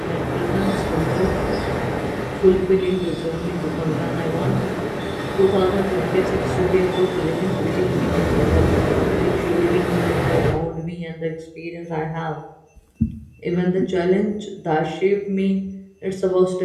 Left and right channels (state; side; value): identical; both; correlation 1.00